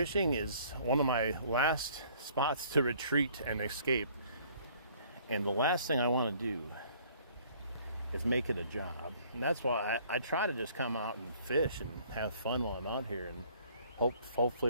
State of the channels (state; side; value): inverted; both; correlation -0.57